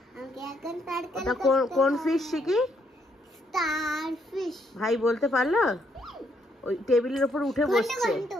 ওটা কোন ফিশ শিখি? ভাই বলতে পারলো? ওই টেবিলের উপর উঠে বসছে।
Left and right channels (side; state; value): both; normal; correlation 0.73